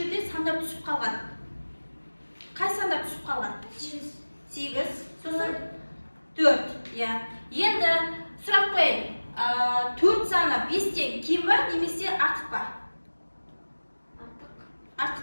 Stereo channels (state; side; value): inverted; both; correlation -1.00